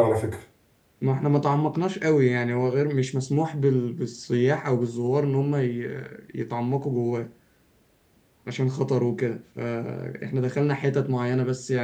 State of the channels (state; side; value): identical; both; correlation 1.00